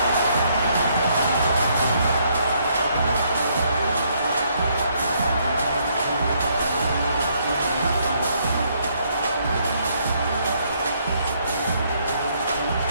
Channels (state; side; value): inverted; both; correlation -0.70